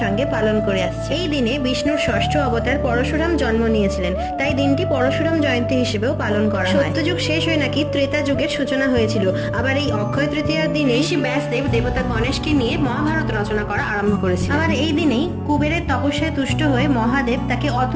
সঙ্গে পালন করে আসছে। এই দিনে বিষ্ণুর ষষ্ঠ অবতার পরশুরাম জন্ম নিয়েছিলেন, তাই দিনটি পরশুরাম জয়ন্তী হিসেবেও পালন করা হয়। সত্যযুগ শেষ হয়ে নাকি ত্রেতা যুগের সূচনা হয়েছিল। আবার এই অক্ষয় তৃতীয়ার দিনে ঋষি ব্যাসদেব দেবতা গণেশকে নিয়ে মহাভারত রচনা করা আরম্ভ করেছিল। আবার এই দিনেই কুবেরের তপস্যায় তুষ্ট হয়ে মহাদেব তাকে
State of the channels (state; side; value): identical; both; correlation 1.00